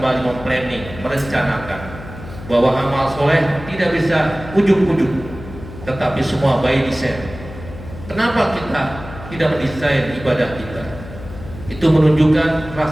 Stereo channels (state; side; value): noise; left; hum, 14 dB below the sound